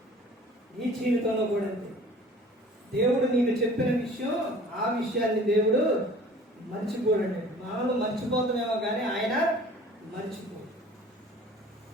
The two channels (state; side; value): normal; both; correlation 0.48